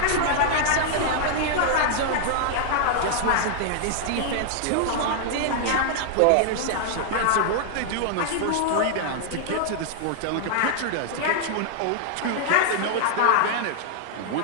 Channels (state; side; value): different; both; correlation -0.01